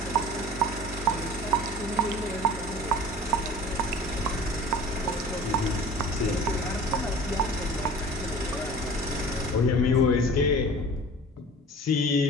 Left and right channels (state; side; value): normal; both; correlation 0.42